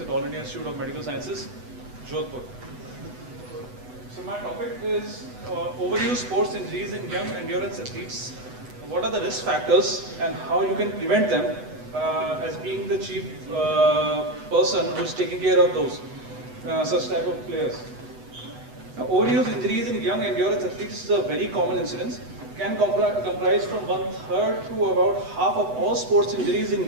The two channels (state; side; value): late; left; 8.0 ms